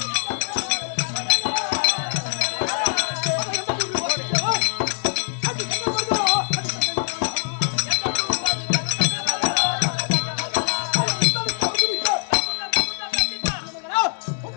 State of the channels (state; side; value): silent; right; 63 dB below the other